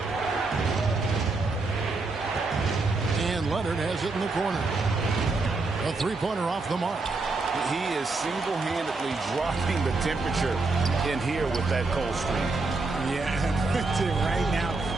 And Leonard has it in the corner. A three-pointer off the mark. He is single-handedly dropping the temperature in here with that cold streak. Yeah, right now,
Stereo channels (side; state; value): left; quieter; 3.6 dB